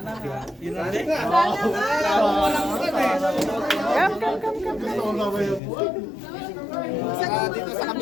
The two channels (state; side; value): drops out; right; at 5.6 s